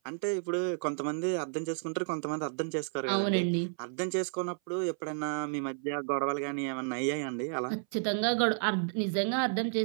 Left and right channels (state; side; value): silent; left; 57 dB below the other